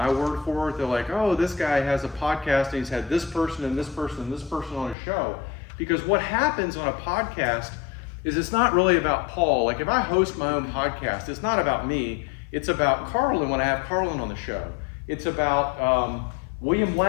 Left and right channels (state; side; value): drops out; right; at 5.0 s